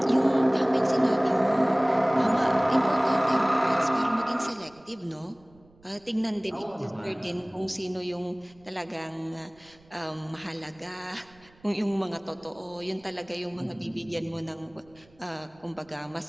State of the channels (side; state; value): right; noise; rumble, 29 dB below the sound